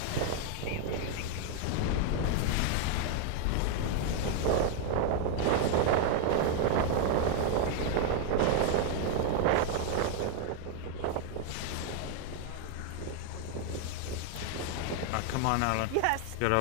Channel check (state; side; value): different; both; correlation 0.00